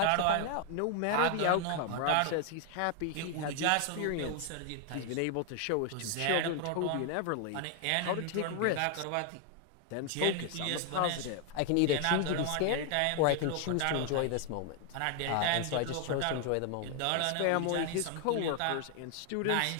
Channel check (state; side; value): different; both; correlation 0.00